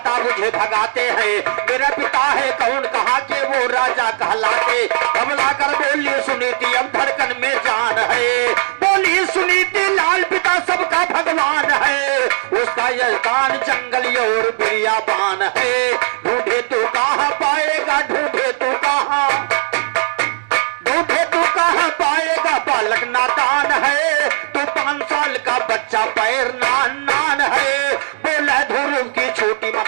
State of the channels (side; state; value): left; silent; digital silence